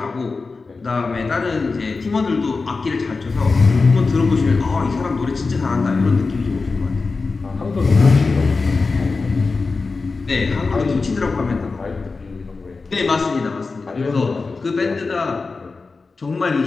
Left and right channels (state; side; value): quieter; right; 4.1 dB